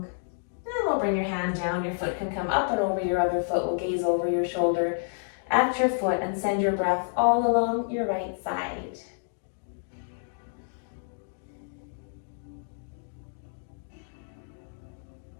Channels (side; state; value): right; silent; digital silence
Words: and we'll bring your hand down. Your foot can come up and over your other foot. We'll gaze over your shoulder at your foot and send your breath all along your right side.